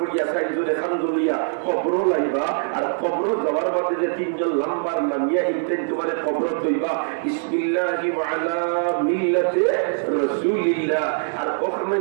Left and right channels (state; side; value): silent; left; digital silence